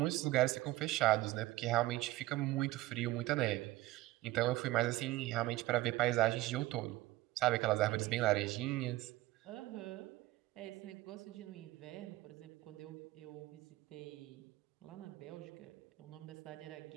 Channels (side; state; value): left; quieter; 17.6 dB